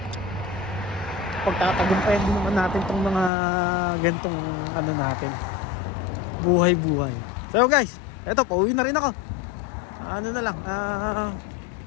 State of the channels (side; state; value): right; drops out; at 3.3 s